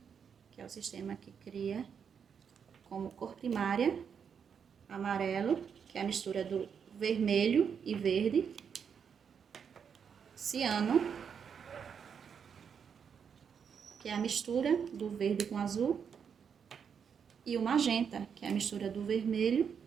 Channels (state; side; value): quieter; left; 7.1 dB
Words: Que é o sistema que cria como cor primária amarelo, que é a mistura do vermelho e verde, ciano, que é a mistura do verde com azul, e o magenta, que é a mistura do vermelho